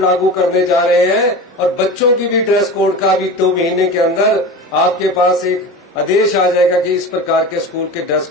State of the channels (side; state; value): both; normal; correlation 0.30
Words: लागू करने जा रहे हैं और बच्चों की भी ड्रेस कोड का भी 2 महीने के अंदर आपके पास एक आदेश आ जाएगा कि इस प्रकार के स्कूल के ड्रेस